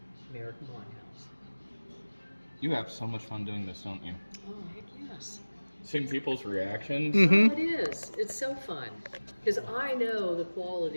American Winehouse. You have so much fun doing this, don't you? Oh, heck yes. Seeing people's reactions. Mm-hmm. Oh, it is. It's so fun. Because I know the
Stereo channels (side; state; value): both; inverted; correlation -1.00